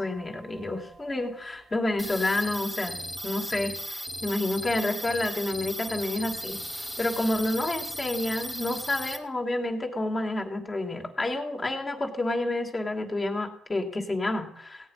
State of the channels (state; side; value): normal; both; correlation 0.93